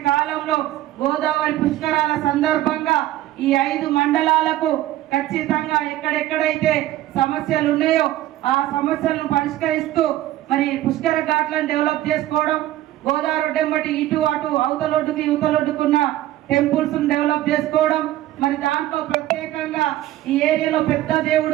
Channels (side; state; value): left; quieter; 14.6 dB